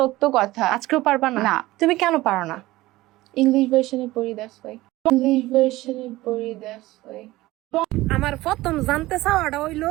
কথা। আজকেও পারবা না? না। তুমি কেন পারো না? ইংলিশ ভার্সনে পড়ি, দ্যাটস ওয়াই। ইংলিশ ভার্সনে পড়ি, দ্যাটস ওয়াই। আমার প্রথম জানতে চাওয়াটা হইলো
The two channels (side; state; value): left; quieter; 18.1 dB